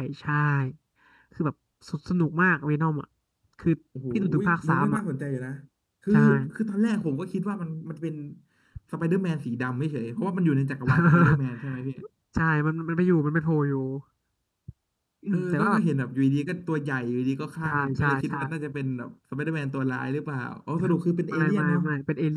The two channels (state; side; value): identical; both; correlation 1.00